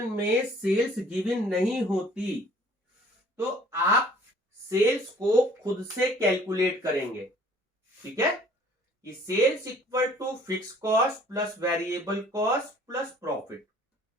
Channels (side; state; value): both; normal; correlation 0.54